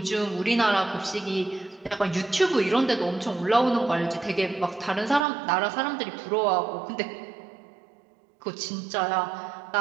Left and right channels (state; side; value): drops out; left; at 5.2 s